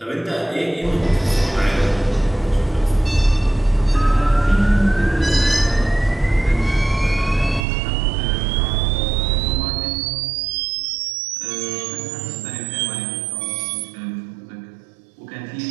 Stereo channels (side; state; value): left; drops out; at 7.7 s